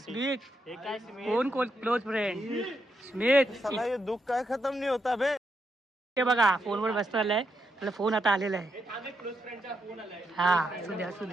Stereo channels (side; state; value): both; normal; correlation 0.81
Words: हे काय स्मित? कोण क्लोज फ्रेंड? स्मित. साला ये दुःख काय खतम नाही होता बे. ते बघा फोनवर बसतो आलाय. त्याला फोन आता आलेला आहे. हा असू